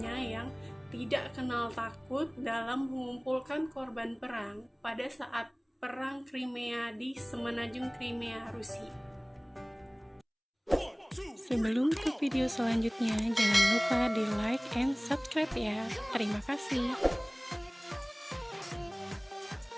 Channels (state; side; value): identical; both; correlation 1.00